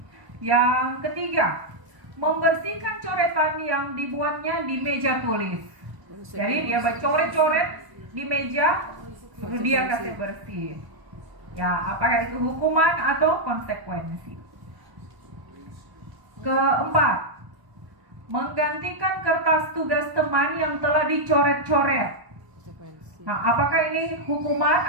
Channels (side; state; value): left; late; 1.0 ms